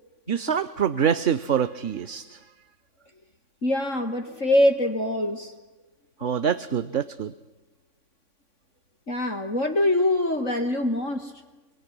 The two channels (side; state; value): right; late; 3.5 ms